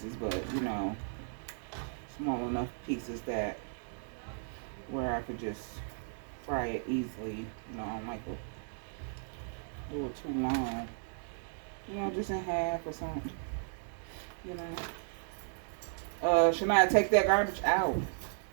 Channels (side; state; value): left; silent; digital silence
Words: but, you know, small enough pieces that where I could just fry it easily. You know, I don't like to do it too long. You know, just in half or something. You know. Shania, take that garbage out.